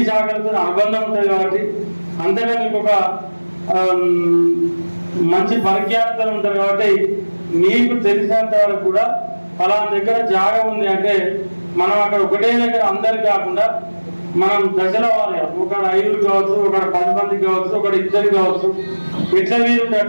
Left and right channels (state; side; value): inverted; both; correlation -1.00